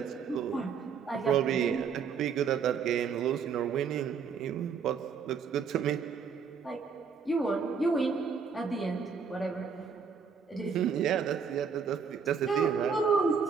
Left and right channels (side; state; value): left; quieter; 6.1 dB